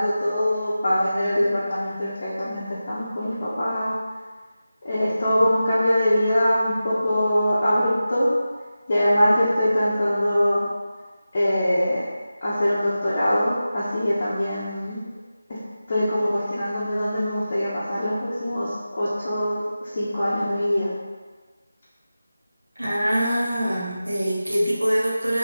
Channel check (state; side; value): inverted; both; correlation -0.94